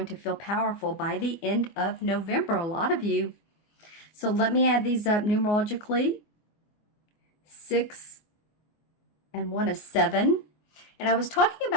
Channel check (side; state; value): right; late; 24 ms